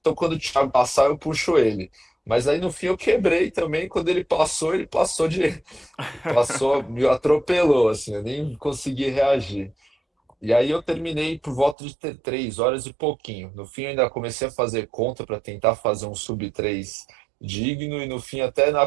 quando o Thiago passar, eu puxo ele. Mas aí no fim eu quebrei também, quando ele passou passou, me atropelou, assim, eu nem consegui reagir. E aí eu terminei por volta de 3 horas e pouquinho. No fim, eu ainda comecei a fazer conta para tentar fazer um sub 3 digno, e no fim, até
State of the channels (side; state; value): left; drops out; at 11.8 s